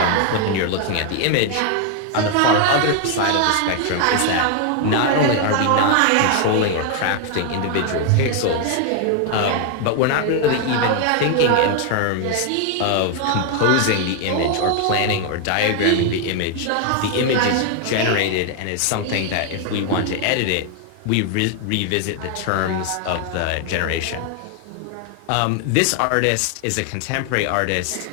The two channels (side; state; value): both; different; correlation 0.00